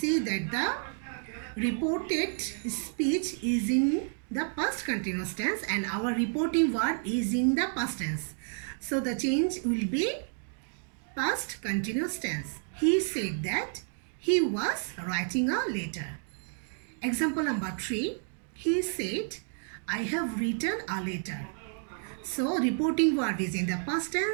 that the reported speech is in the past continuous tense and our reporting verb is in the past tense. So the change will be past continuous tense. He said that he was writing a letter. Example number 3. He said, I have written a letter. So, reporting verb is in the past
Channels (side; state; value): left; silent; 57 dB below the other